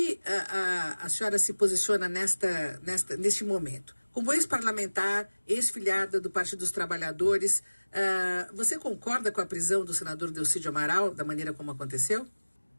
a senhora se posiciona neste momento? Como ex-parlamentar, ex-filiada do Partido dos Trabalhadores, você concorda com a prisão do senador Delcídio Amaral, da maneira como aconteceu?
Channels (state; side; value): inverted; both; correlation -1.00